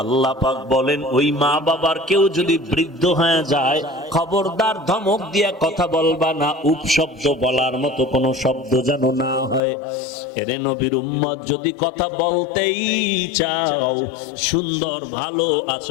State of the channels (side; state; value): right; drops out; at 9.6 s